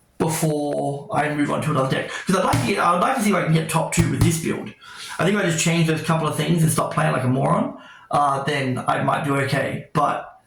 before I move on to another deck. Because I would like to see if I can get top 2 with this build. I think if I just change those couple of things and stop playing like a moron, then I might do okay. But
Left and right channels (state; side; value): identical; both; correlation 1.00